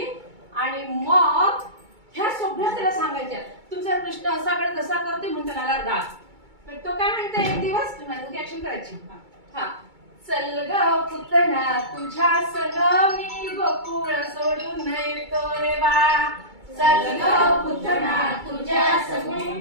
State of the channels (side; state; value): left; late; 2.2 ms